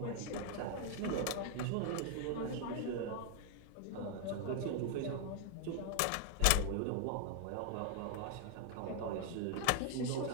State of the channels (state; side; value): different; both; correlation 0.00